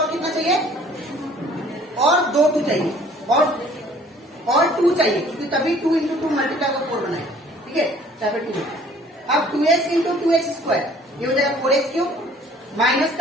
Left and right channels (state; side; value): normal; both; correlation 0.55